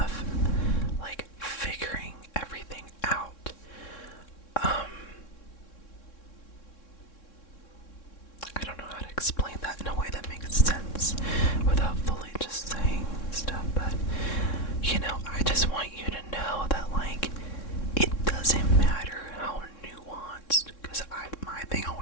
like figuring everything out. I don't know how to explain that in a way that makes sense without fully just saying stuff, but you know, I just want you to know that like it doesn't matter how nuanced, because my thing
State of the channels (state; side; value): late; right; 3.6 ms